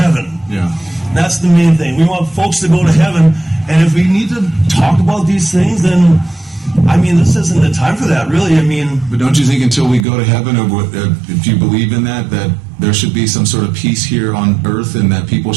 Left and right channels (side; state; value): left; drops out; at 10.1 s